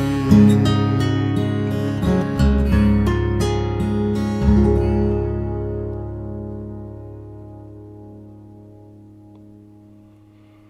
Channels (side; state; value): both; identical; correlation 1.00